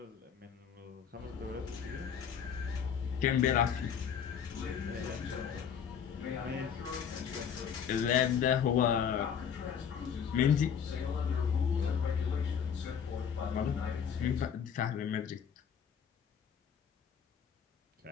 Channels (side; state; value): right; quieter; 7.6 dB